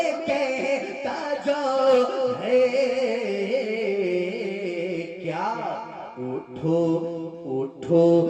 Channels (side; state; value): both; identical; correlation 1.00